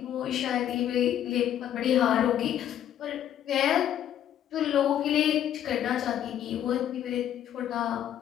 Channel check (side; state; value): right; quieter; 10.8 dB